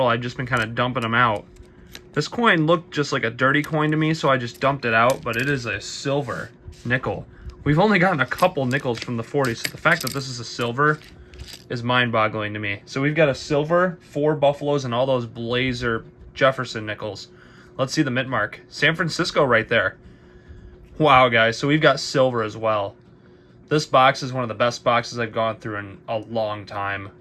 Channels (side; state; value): both; identical; correlation 1.00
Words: I've just been kind of dumping them out. This coin looked just like a dirty coin to me, so I just dumped it out, but it is a silver nickel. We've only gotten a couple nickels from the 40s, so the fact that this is a silver is mind-boggling to me. So we've got a silver, 4 Buffaloes, and all those Blazer Jefferson nickels. Let's see the mint mark. San Francisco right there. Wow, guys, so we've got silver as well. This box is one of the best boxes I've gone through in a long time.